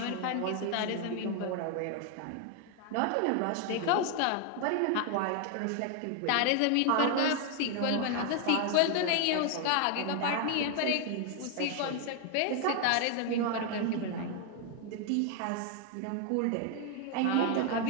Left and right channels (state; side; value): different; both; correlation 0.00